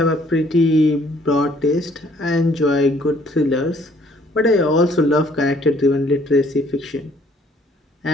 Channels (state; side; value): normal; both; correlation 0.61